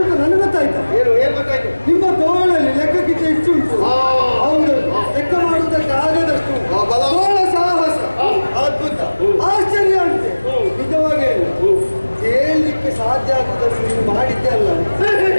ನನಗೆ ಗೊತ್ತಾಯ್ತು. ಏನು ಗೊತ್ತಾಯ್ತು? ನಿಮ್ಮ ತೋಳಲ್ಲಿ ಲೆಕ್ಕಕ್ಕಿಂತ ಹೆಚ್ಚು ಉಂಟು. ಹೌದು, ಲೆಕ್ಕ ಮಾಡುವುದಕ್ಕೆ ಆಗದಷ್ಟು ತೋಳ ಸಾಹಸ ಅದ್ಭುತ, ಆಶ್ಚರ್ಯ ಅಂತೆ. ನಿಜವಾಗಿ ಹೇಳಲಿಕ್ಕೆ ಸಾಧ್ಯ ಆಗುವುದನ್ನು ನೀವು ಮಾಡಿದ್ದೆ ಅಲ್ಲ,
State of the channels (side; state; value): both; inverted; correlation -1.00